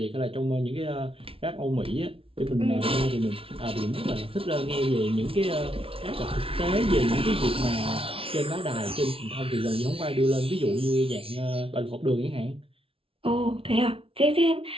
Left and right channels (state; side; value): late; left; 0.26 ms